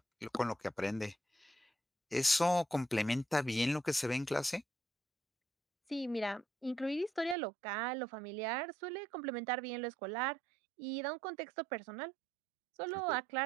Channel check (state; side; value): drops out; left; at 7.4 s